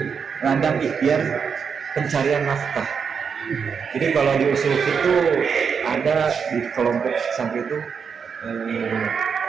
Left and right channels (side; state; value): left; quieter; 6.3 dB